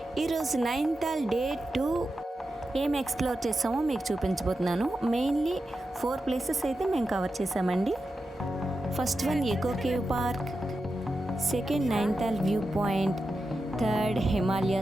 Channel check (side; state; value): both; normal; correlation 0.90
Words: ఈరోజు Nainital day 2 ఏం explore చేసామో మీకు చూపించబోతున్నాను. మెయిన్లీ 4 ప్లేసెస్ అయితే మేము కవర్ చేసామండి. First one echo cave park, second Nainital viewpoint, third